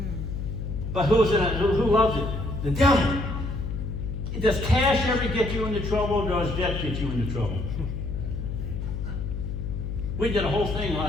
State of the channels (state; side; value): noise; left; hum, 4 dB below the sound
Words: But who loves it? The devil. Does cash ever get you into trouble, or does debt get you into trouble? We did a whole thing